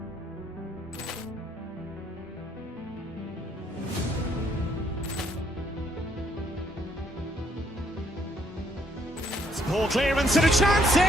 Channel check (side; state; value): both; normal; correlation 0.69